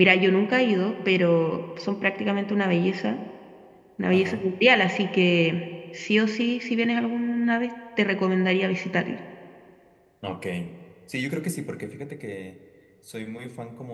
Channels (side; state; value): both; identical; correlation 1.00